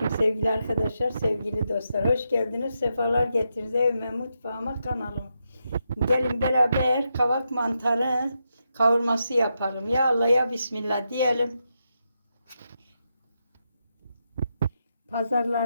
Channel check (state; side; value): inverted; both; correlation -0.84